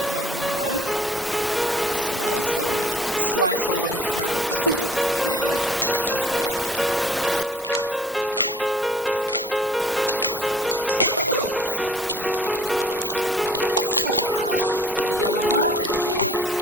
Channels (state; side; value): normal; both; correlation 0.54